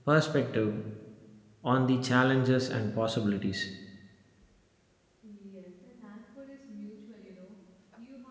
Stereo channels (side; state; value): both; identical; correlation 1.00